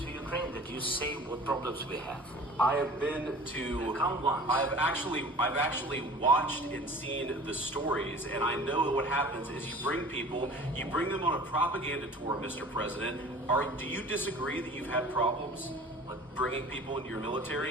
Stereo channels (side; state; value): both; normal; correlation 0.43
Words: Ukraine? That you say what problems we have? I have been to. Come once. I've actually watched and seen the stories, and I know that what happens is you bring them on a propaganda tour, Mr. President. Do you disagree that you've had problems bringing people into your